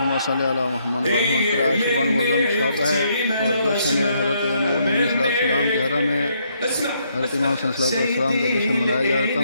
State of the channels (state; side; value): inverted; both; correlation -0.73